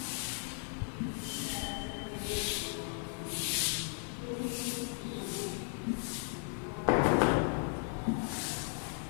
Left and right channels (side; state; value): right; silent; 54 dB below the other